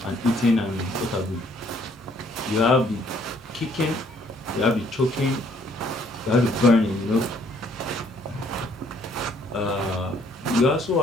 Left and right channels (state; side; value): normal; both; correlation 0.64